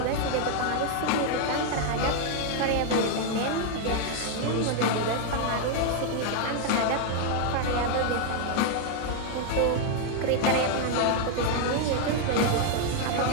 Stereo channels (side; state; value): both; different; correlation 0.00